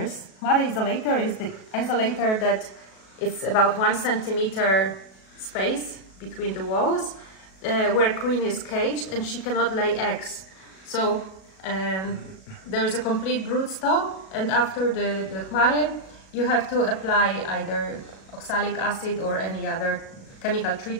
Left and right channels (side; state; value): right; late; 37 ms